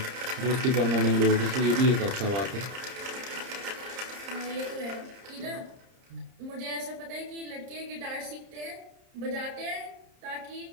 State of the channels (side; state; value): left; late; 30 ms